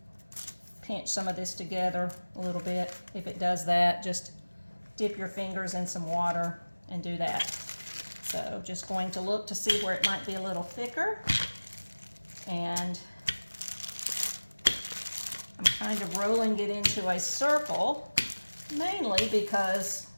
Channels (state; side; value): inverted; both; correlation -1.00